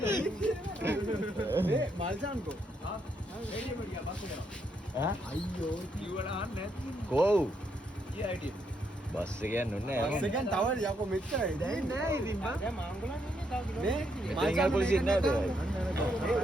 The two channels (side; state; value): both; normal; correlation 0.76